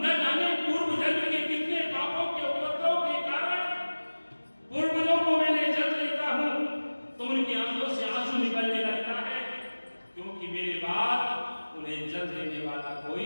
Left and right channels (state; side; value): inverted; both; correlation -1.00